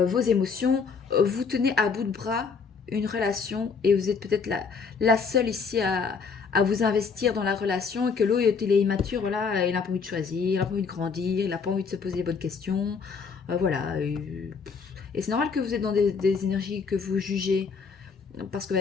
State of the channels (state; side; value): quieter; right; 5.3 dB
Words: émotions. Vous tenez à bout de bras une relation et vous êtes peut-être la seule ici à vous investir dans la relation et que l'autre, il est immature, voilà, il n'a pas envie de choisir, il n'a pas envie de grandir, il n'a pas envie de se poser les bonnes questions. Voilà. Et c'est normal que vous êtes dans des énergies que vous jugez. Parce que, bah,